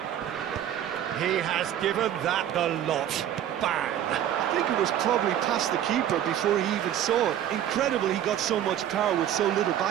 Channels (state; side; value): quieter; left; 10.8 dB